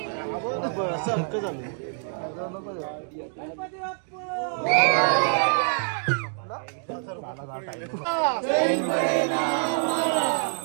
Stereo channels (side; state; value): left; silent; digital silence